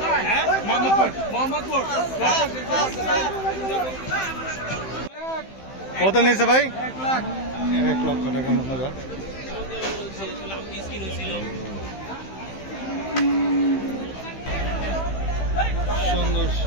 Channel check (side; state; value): right; late; 15 ms